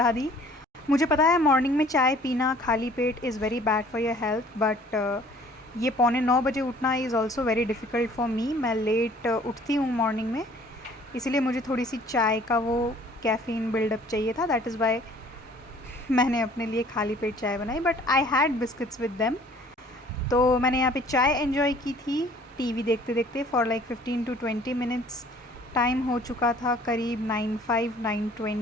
दी। मुझे पता है मॉर्निंग में चाय पीना खाली पेट is very bad for your health, but ये 9:45 उठना is also very difficult for me. मैं लेट उठती हूँ मॉर्निंग में, इसीलिए मुझे थोड़ी सी चाय का वो कैफ़ीन बिल्डअप चाहिए था। दैट इज़ वाई मैंने अपने लिए खाली पेट चाय बनाई, but I had biscuits with them. तो मैंने यहाँ पे चाय एंजॉय की थी टीवी देखते देखते for like 15 to 20 minutes. Time हो चुका था करीब 9:05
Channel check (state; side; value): normal; both; correlation 0.54